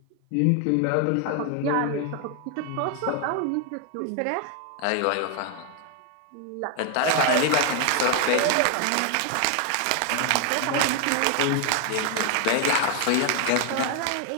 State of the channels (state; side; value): different; both; correlation 0.01